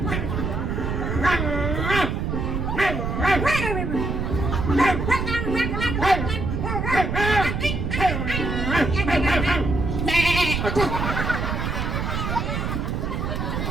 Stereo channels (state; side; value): noise; right; rumble, 1 dB below the sound